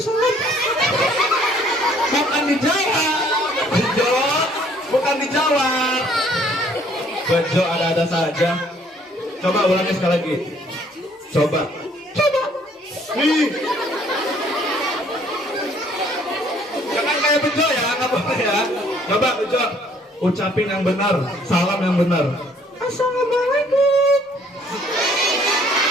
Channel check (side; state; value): both; normal; correlation 0.61